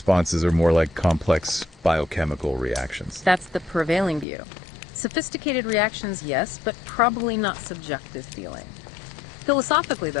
are more like complex biochemical reactions. That's the prevailing view. Sophisticated reactions, yes, but probably not subjective feeling. Philosophically,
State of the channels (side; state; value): right; drops out; at 4.2 s